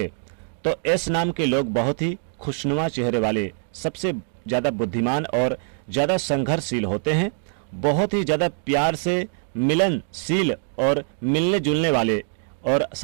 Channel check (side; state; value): left; silent; 63 dB below the other